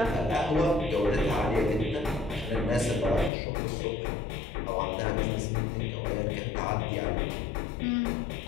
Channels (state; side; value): drops out; right; at 3.3 s